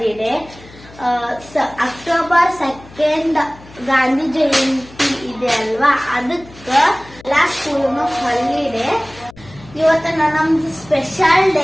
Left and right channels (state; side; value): noise; left; hum, 21 dB below the sound